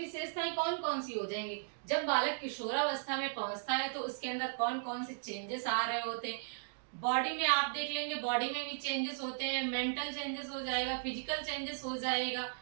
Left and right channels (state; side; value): silent; left; digital silence